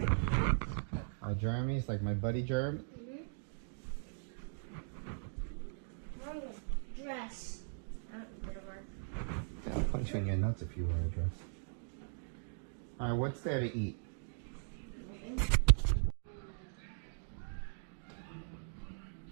Oh, Jeremys? Like my buddy Jeremy? Wrong one. Dress. Didn't work. Yeah, I'll punch you in your nuts if you wear a dress. Alright, what's there to eat?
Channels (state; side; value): silent; left; digital silence